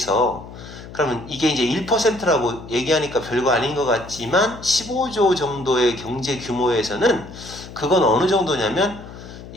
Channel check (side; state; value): left; noise; hum, 15 dB below the sound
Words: 그러면 이게 이제 1%라고 얘기하니까 별거 아닌 것 같지만 15조 정도의 경제 규모에서는 그건 어느 정도냐면